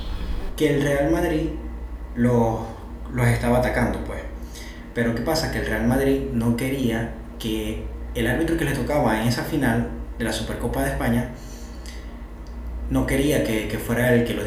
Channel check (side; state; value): both; identical; correlation 1.00